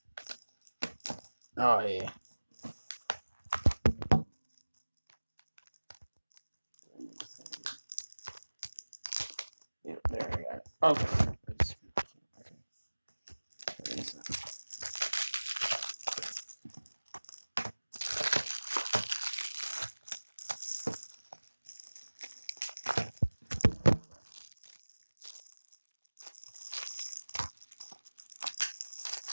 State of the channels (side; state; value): both; inverted; correlation -1.00